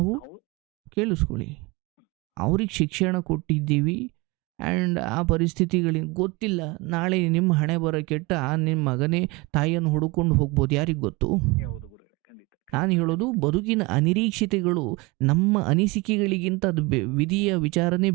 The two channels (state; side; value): quieter; left; 24.8 dB